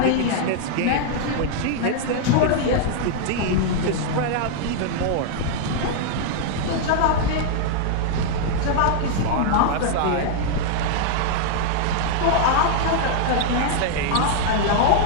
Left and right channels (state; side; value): different; both; correlation -0.01